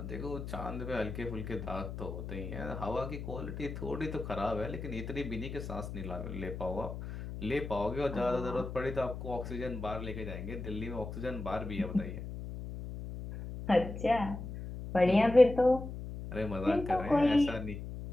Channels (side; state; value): left; noise; hum, 8 dB below the sound